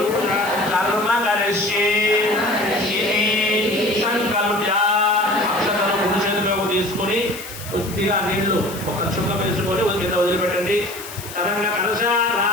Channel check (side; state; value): left; noise; hiss, 13 dB below the sound